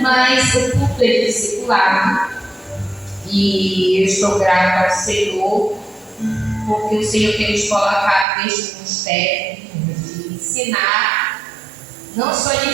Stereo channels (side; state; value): left; drops out; at 8.2 s